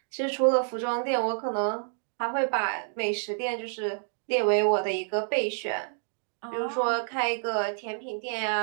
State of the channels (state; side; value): silent; left; digital silence